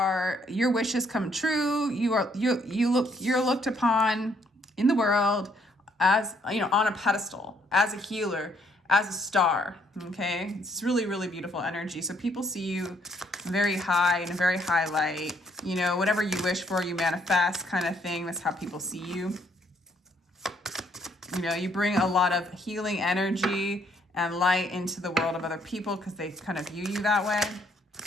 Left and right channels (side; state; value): both; normal; correlation 0.68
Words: wishes come true. You're looked upon in the world as, you know, on a pedestal, as a healer, as a star. Okay, it's really, really beautiful energy. So people see you very high, in a very high light. You know, whatever you wish for, you manifest, kind of thing. That's how people see you. You know, you bring a lot of healing energy and light into the world of other people because they kind of view you that way.